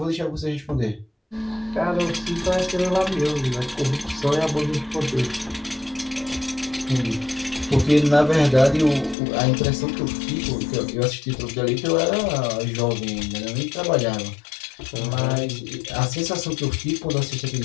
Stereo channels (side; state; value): right; drops out; at 9.2 s